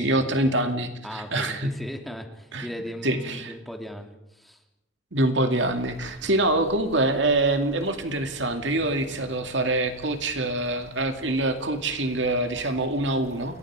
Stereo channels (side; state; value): both; normal; correlation 0.12